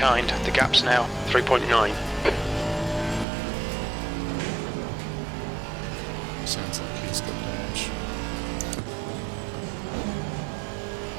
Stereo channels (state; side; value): drops out; left; at 3.2 s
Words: The gap's now 3.9. Sounds like he's got damage.